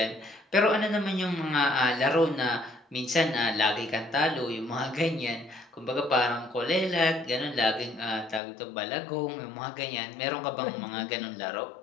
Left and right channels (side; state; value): right; drops out; at 8.4 s